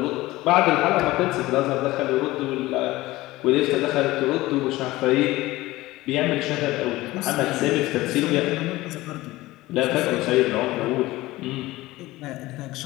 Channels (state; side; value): quieter; right; 18.4 dB